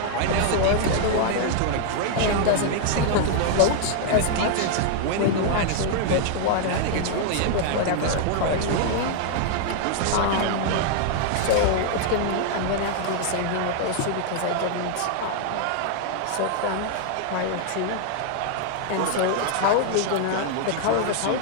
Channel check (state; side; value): different; both; correlation 0.00